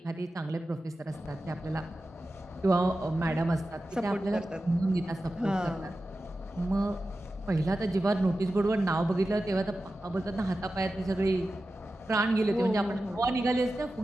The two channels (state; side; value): normal; both; correlation 0.93